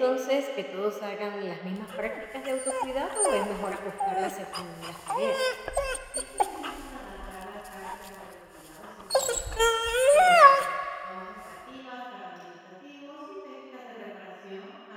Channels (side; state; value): both; identical; correlation 1.00